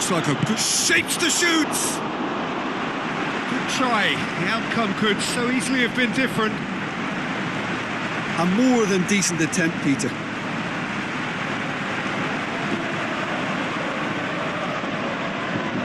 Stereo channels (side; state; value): both; identical; correlation 1.00